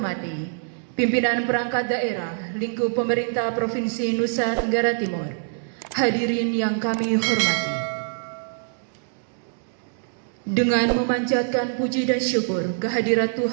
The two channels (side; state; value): left; silent; digital silence